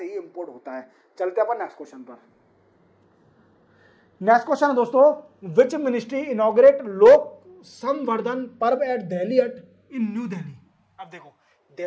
ही इंपोर्ट होता है। चलते अपन नेक्स्ट क्वेश्चन पर। नेक्स्ट क्वेश्चन है दोस्तों, विच मिनिस्ट्री इनॉग्रेट लोक संवर्धन पर्व एट दिल्ली हट इन न्यू दिल्ली। अब देखो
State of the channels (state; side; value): identical; both; correlation 1.00